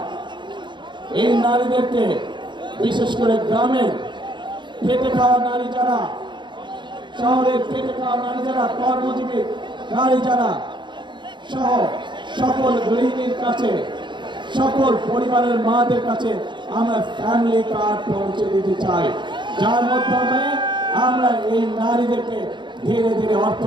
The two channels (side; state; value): left; late; 0.22 ms